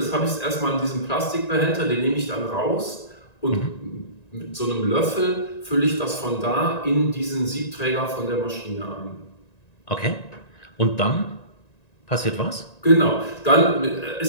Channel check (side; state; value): right; late; 1.9 ms